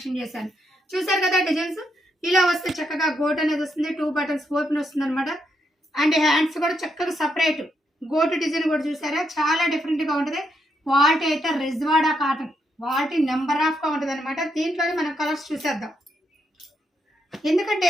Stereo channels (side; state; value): both; normal; correlation 0.79